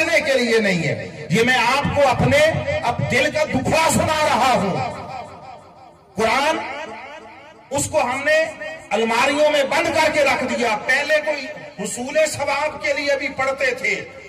کے لیے نہیں ہے۔ یہ میں آپ کو اپنے دل کا دکھڑا سنا رہا ہوں۔ قرآن اس کو ہم نے الماریوں میں بند کر کے رکھ دیا۔ پہلے کوئی حصول ثواب کے لیے بھی پڑھتے تھے،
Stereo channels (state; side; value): identical; both; correlation 1.00